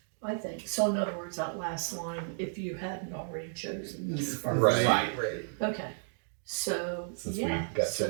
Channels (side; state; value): left; silent; digital silence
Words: I think. So in other words, that last line, if you hadn't already chosen this first. Right. Okay. So, Since yeah. we got